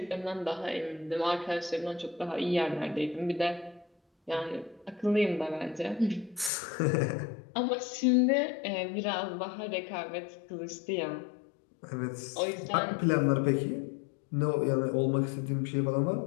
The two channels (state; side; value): drops out; right; at 6.5 s